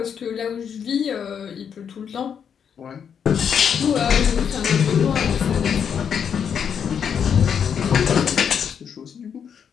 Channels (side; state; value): right; quieter; 7.6 dB